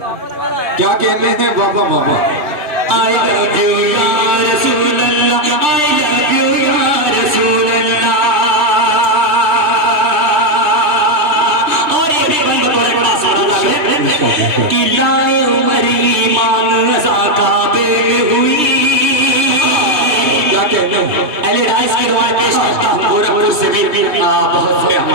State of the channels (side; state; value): left; late; 3.3 ms